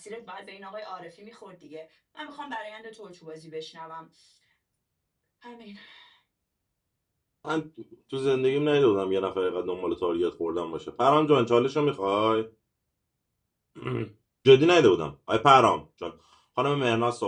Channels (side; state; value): both; identical; correlation 1.00